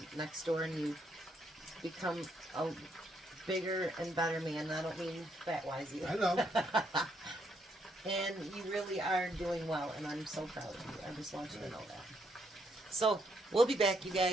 next door, and you've become a bigger and better man. And I don't mean fat-wise either. I know. And you really are doing well, and I'm so proud of you. I just want you to know that. So, We'll be back, you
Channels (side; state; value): both; normal; correlation 0.74